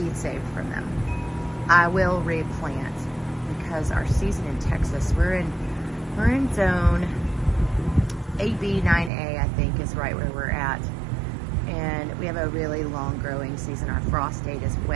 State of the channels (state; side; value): drops out; left; at 9.1 s